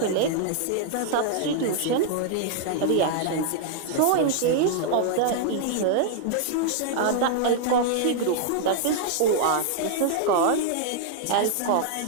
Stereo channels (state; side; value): different; both; correlation -0.01